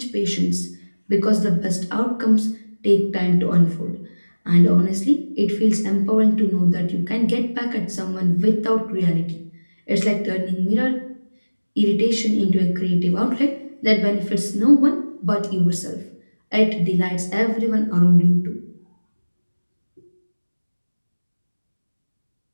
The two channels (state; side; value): inverted; both; correlation -1.00